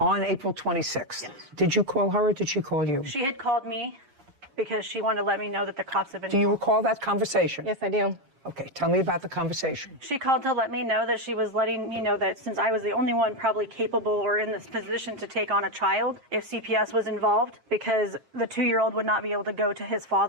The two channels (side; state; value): left; late; 7.4 ms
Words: April 26th. Did you call her or did she call you? She had called me because she wanted to let me know that the cops had been. Do you recall that conversation? Yes, I do. Okay, tell me about the conversation. She called to let me know that she was letting me know that since I was the only one probably capable or in this position to take on a child, if CPS was involved, because the 2-year-old would not be able to go to his